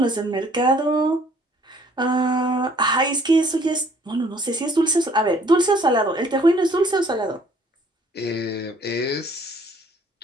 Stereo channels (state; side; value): normal; both; correlation 0.60